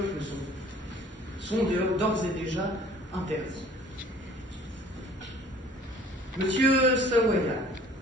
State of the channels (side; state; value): both; normal; correlation 0.52